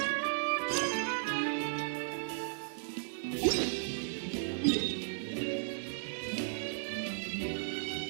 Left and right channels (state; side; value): silent; left; digital silence